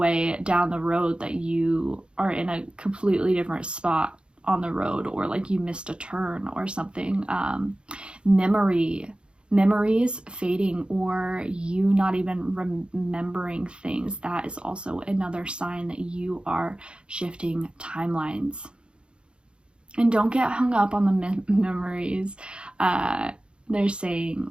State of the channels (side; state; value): left; late; 0.055 ms